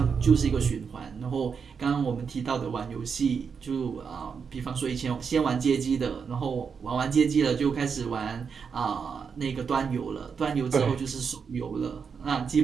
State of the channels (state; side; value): quieter; left; 6.1 dB